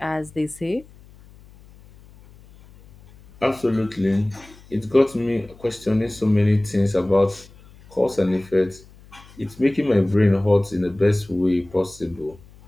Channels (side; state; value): left; noise; hum, 24 dB below the sound